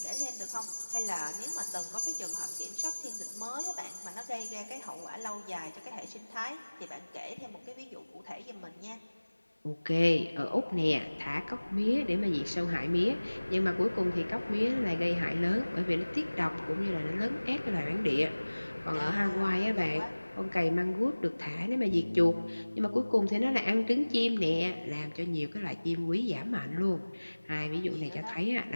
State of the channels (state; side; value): inverted; both; correlation -1.00